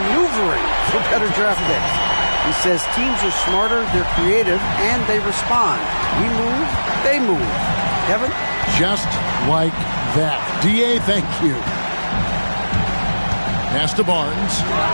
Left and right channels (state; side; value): inverted; both; correlation -1.00